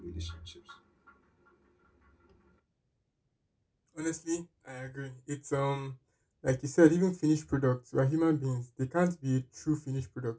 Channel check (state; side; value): identical; both; correlation 1.00